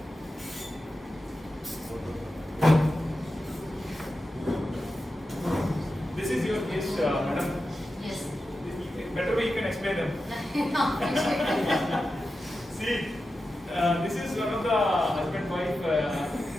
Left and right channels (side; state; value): both; normal; correlation 0.91